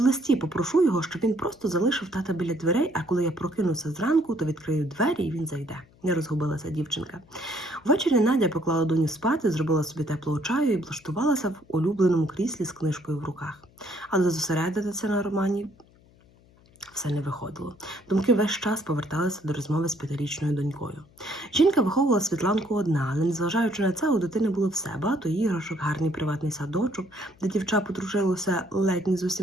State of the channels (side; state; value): left; noise; hum, 29 dB below the sound